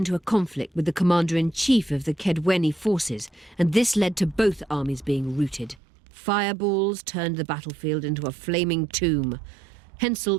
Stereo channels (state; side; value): drops out; left; at 5.8 s